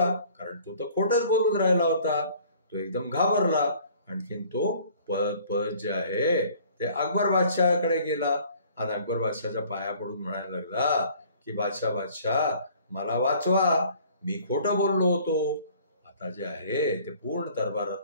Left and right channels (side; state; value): both; inverted; correlation -0.54